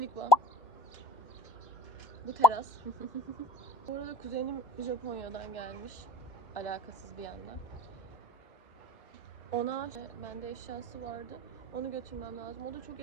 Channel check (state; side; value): late; right; 1.1 ms